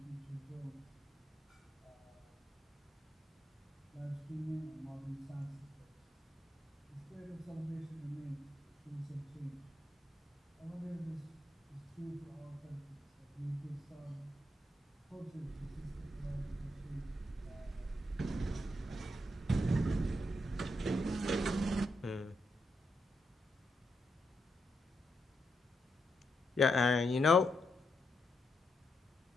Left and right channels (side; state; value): both; normal; correlation 0.81